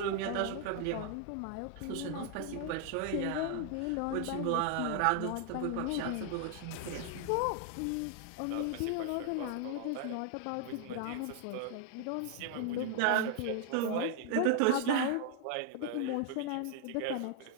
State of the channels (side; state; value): both; different; correlation 0.00